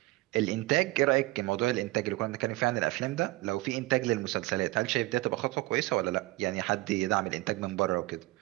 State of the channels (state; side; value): quieter; left; 20.8 dB